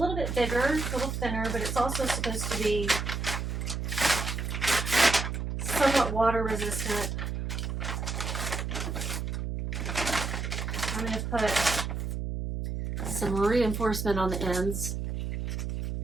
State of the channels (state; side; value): noise; right; hum, 3 dB below the sound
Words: bit bigger, a little thinner, but it's also supposed to be somewhat water resistant. I'm going to put some reinforcement on the ends.